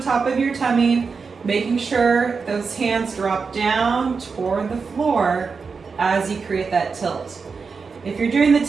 top of your tummy, making sure those hands drop down toward the floor as you create that tilt. If you're doing the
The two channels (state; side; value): quieter; left; 5.1 dB